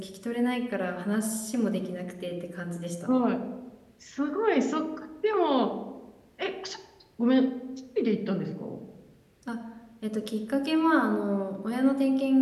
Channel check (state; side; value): identical; both; correlation 1.00